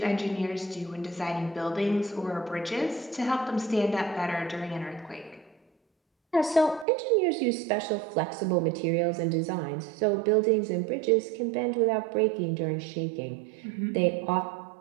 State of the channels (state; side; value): drops out; left; at 6.9 s